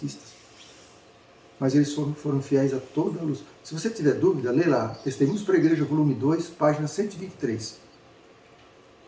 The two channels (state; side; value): identical; both; correlation 1.00